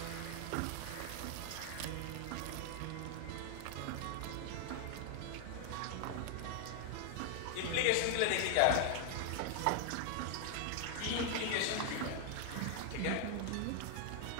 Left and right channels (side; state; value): both; different; correlation 0.00